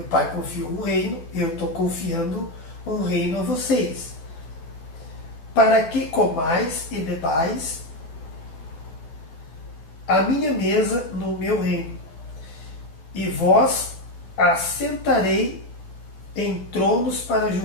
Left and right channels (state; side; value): late; right; 12 ms